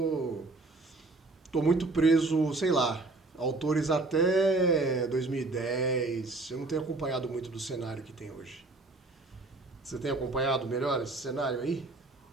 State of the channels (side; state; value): left; quieter; 3.2 dB